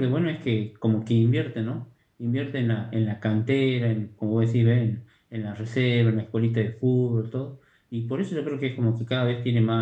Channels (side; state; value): both; identical; correlation 1.00